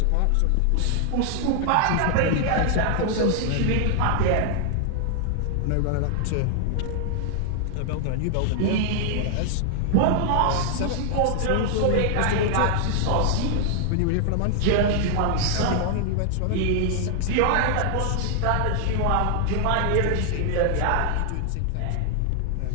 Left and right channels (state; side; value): different; both; correlation 0.00